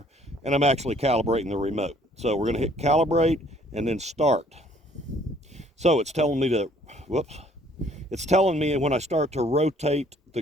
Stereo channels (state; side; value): normal; both; correlation 0.60